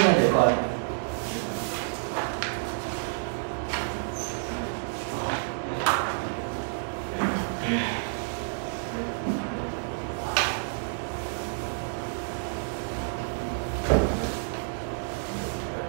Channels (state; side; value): silent; left; digital silence